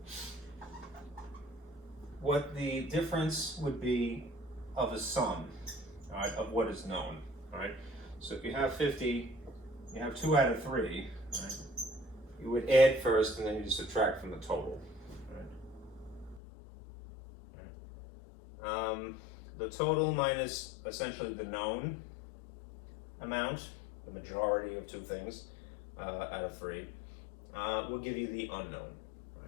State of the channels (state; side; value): drops out; right; at 16.4 s